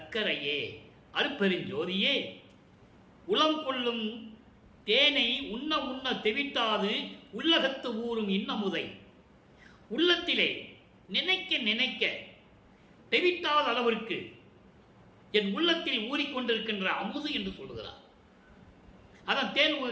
அருட்பெருஞ்சோதியே, உளம் கொள்ளும் தேனை உண்ண உண்ண தெவிட்டாது உள்ளகத்து ஊறும் இன்னமுதை. உள்ளத்திலே நினைக்க நினைக்க தெவிட்டாத அளவிற்கு என் உள்ளத்தில் ஊறிக்கொண்டிருக்கின்ற அமுது என்று சொல்லுகிறார். அதான்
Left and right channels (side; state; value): both; identical; correlation 1.00